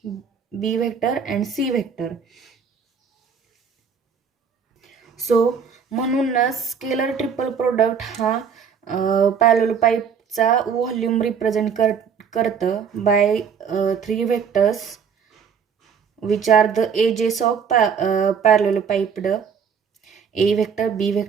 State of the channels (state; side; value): quieter; left; 6.7 dB